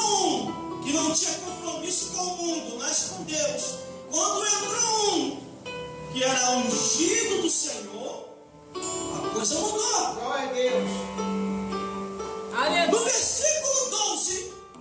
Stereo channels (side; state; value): both; identical; correlation 1.00